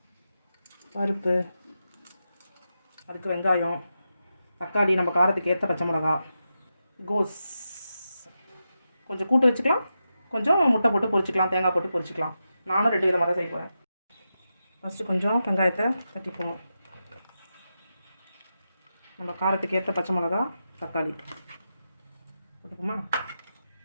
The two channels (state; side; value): inverted; both; correlation -0.89